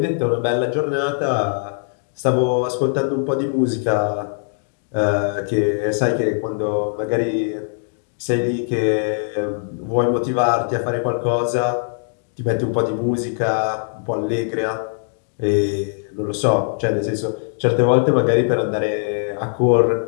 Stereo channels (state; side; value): silent; right; digital silence